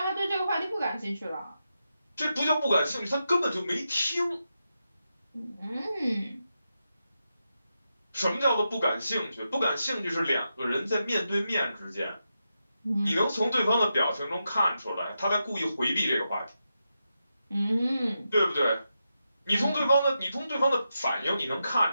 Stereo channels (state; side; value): inverted; both; correlation -0.87